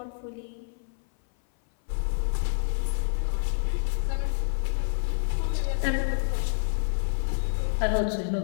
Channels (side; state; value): right; silent; 58 dB below the other